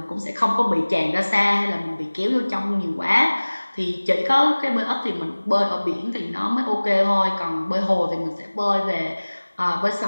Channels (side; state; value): both; inverted; correlation -1.00